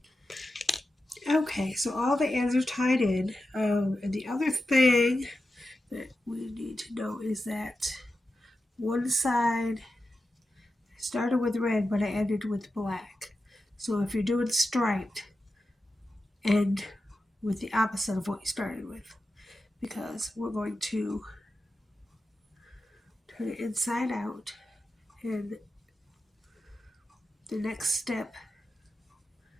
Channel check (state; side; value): normal; both; correlation 0.91